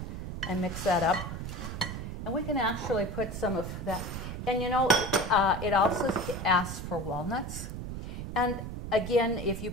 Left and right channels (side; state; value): right; noise; rumble, 6 dB below the sound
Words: and mix that up, and we can actually put some of that. And it also asks for walnuts. And again, if you